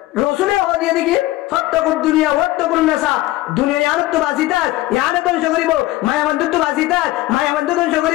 রসুলে হদিয়ে দেখি ফত্তাকুদ দুনিয়া ওয়াত্তাকুন নাসা দুনিয়া ইয়ানত তো বাজিতাস ইয়ানে ধ্বংস করিব মায়া মন্দির তো বাজিতাস মায়া মন্দির ধ্বংস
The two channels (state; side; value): quieter; right; 17.5 dB